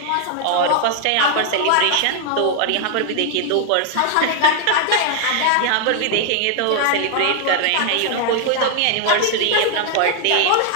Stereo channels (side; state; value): both; different; correlation 0.00